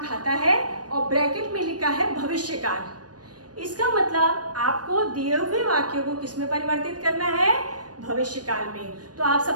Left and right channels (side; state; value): left; late; 0.69 ms